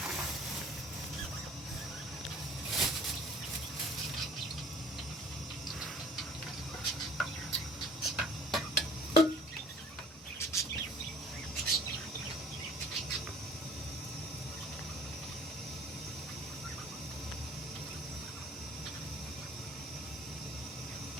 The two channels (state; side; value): normal; both; correlation 0.51